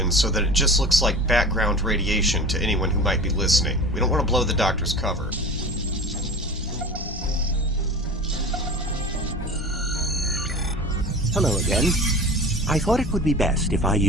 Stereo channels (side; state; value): both; normal; correlation 0.36